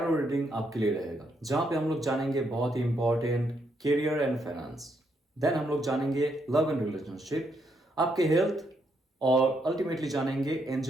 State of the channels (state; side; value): normal; both; correlation 0.76